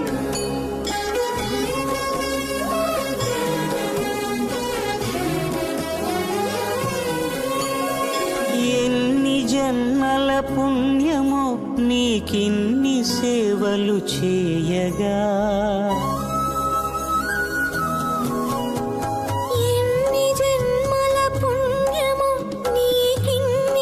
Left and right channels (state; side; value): identical; both; correlation 1.00